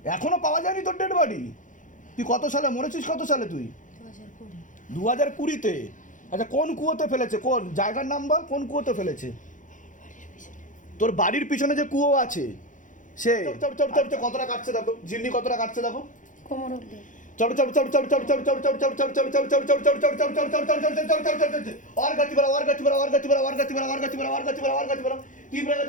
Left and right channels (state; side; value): late; right; 0.37 ms